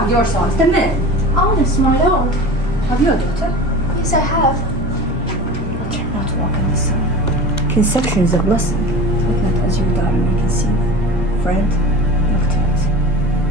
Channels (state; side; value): normal; both; correlation 0.35